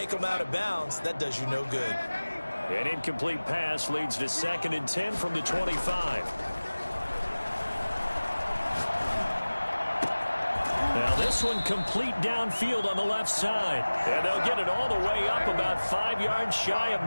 them out of bounds. That does you no good. An incomplete pass leads to 2nd and 10 from the 25. Now this one complete downfield on the left side. And they'll get it all the way up about 5 yards shy of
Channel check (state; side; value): inverted; both; correlation -1.00